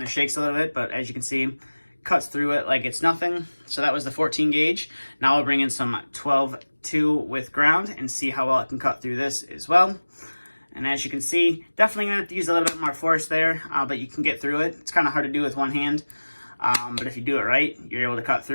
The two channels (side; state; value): both; inverted; correlation -1.00